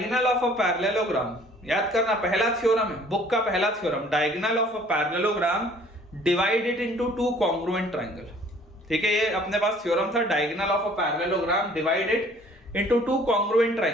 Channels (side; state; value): both; normal; correlation 0.55